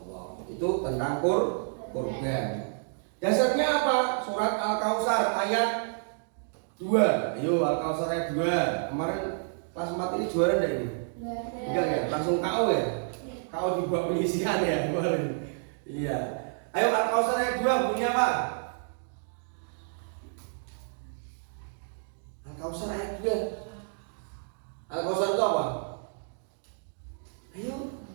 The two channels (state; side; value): silent; left; digital silence